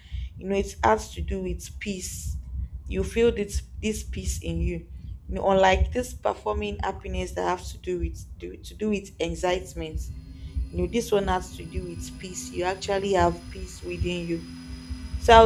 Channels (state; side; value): identical; both; correlation 1.00